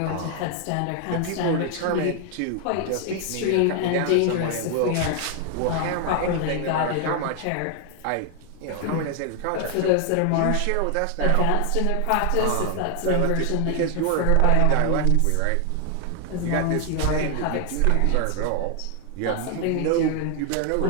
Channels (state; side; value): different; both; correlation 0.00